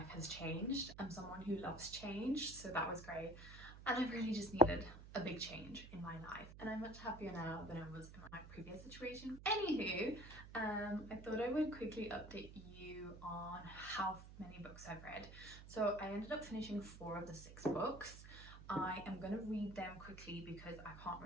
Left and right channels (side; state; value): right; noise; hum, 14 dB below the sound